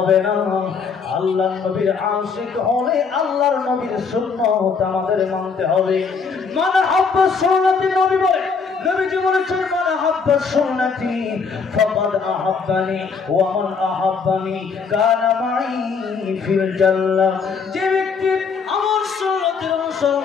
না, আল্লাহর নবীর আশিক হলে আল্লাহর নবীর সুন্নাত আমাদের মানতে হবে। মান হাব্বা সুন্নতি, নবী বলে, নবীজি বলেছেন, মান হাব্বা সুন্নতি ফাকাদ আহাব্বানি ওয়া মান আহাব্বানি কানা মাই ফিল জান্নাহ। যে ব্যক্তি আমার সুন্নতের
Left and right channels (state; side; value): quieter; right; 5.4 dB